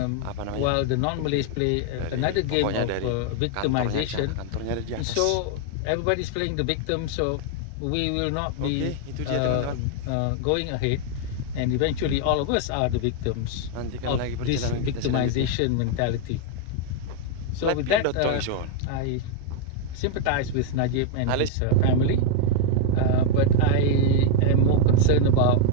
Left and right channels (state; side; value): different; both; correlation 0.00